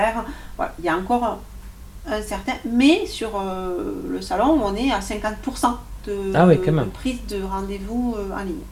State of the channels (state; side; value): identical; both; correlation 1.00